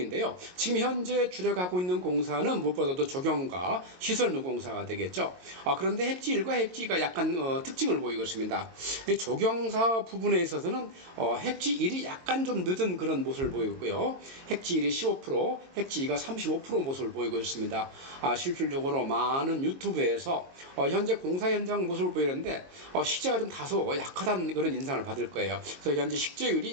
지금 현재 주력하고 있는 공사는 무엇보다도 조경과 시설물 공사가 되겠죠. 그런데 heb지 1과 heb지 2가 약간 특징을 보이고 있습니다. 조경사 부분에 있어서는 heb지 1이 약간 좀 늦은 그런 모습을 보이고 있고요. heb지 1이 15%, heb지 2가 35% 모습을 보이고 있습니다. 실질적으로 많은 유튜브에서 현재 공사 현장 모습을 보이는데 식재가 좀 다소 약하다는 그런 인상을 받을 거예요. 그래서 현재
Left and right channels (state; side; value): late; left; 22 ms